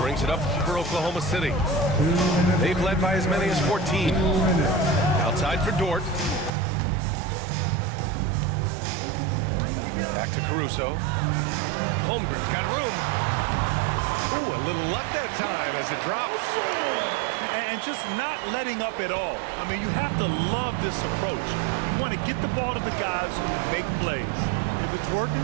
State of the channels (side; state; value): left; drops out; at 6.5 s